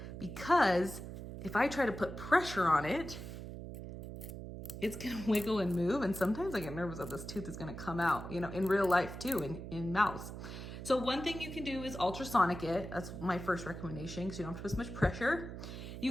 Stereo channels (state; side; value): noise; right; hum, 9 dB below the sound